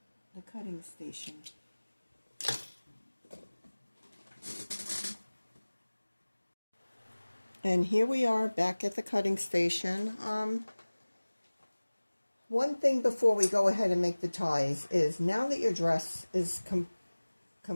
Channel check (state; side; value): inverted; both; correlation -1.00